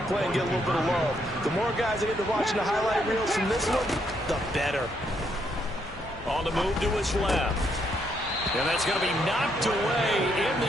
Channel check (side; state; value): both; normal; correlation 0.74